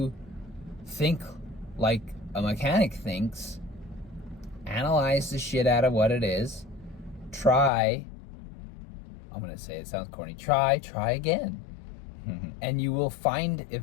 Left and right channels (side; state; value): right; drops out; at 7.7 s